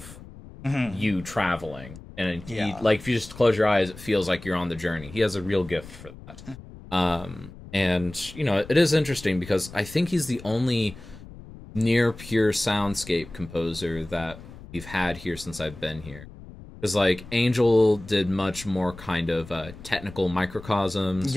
you traveling. And like, if you just close your eyes, it feels like you're on the journey. He has a real gift for that. And, it is interesting because I think he's the only near pure soundscape composer that we've had here since I've been here. Because, like, Angel did much more kind of technical microcosms.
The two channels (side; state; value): left; noise; rumble, 17 dB below the sound